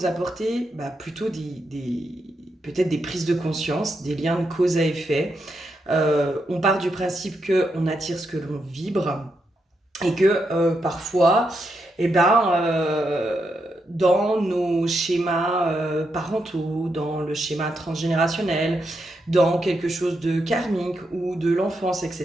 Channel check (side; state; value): both; normal; correlation 0.83